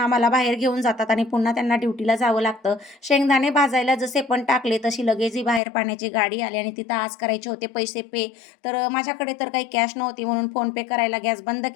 बाहेर घेऊन जातात आणि पुन्हा त्यांना ड्युटीला जावं लागतं. शेंगदाणे भाजायला जसे पण टाकले तशी लगेच ही बाहेर पाण्याची गाडी आली आणि तिथं आज करायचे होते पैसे पे. तर माझ्याकडे तर काही कॅश नव्हती म्हणून फोनपे करायला गॅस बंद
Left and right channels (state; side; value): drops out; right; at 5.6 s